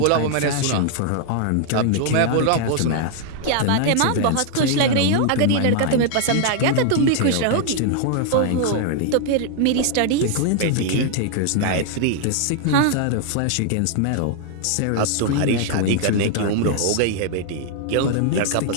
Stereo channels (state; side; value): different; both; correlation 0.00